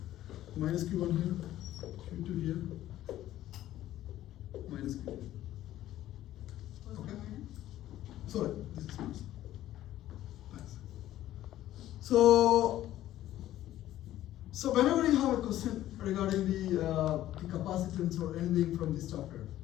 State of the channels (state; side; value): quieter; right; 13.6 dB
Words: minus Q1 here, Q2 here, minus Q2. Okay? Sorry, this is minus. Thanks. So whenever you have a question regarding the capacitance or anything from this chapter,